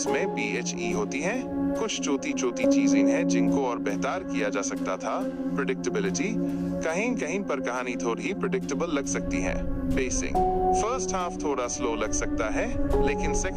में BHE होती हैं। कुछ छोटी चीजें हैं जिनको और बेहतर किया जा सकता था। प्रेडिक्टेबिलिटी, कहीं कहीं पर कहानी थोड़ी प्रेडिक्टेबल लग सकती है। पेसिंग, फर्स्ट हाफ थोड़ा स्लो लग सकता है, लेकिन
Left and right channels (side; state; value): both; identical; correlation 1.00